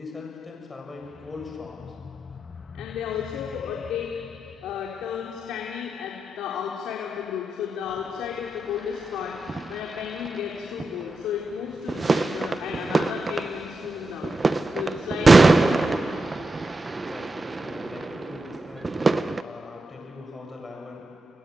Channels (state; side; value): normal; both; correlation 0.88